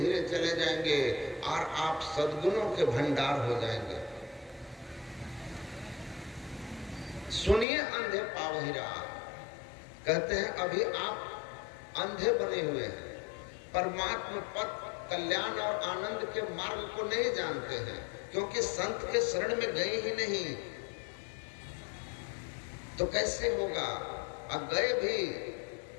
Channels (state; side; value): drops out; right; at 7.7 s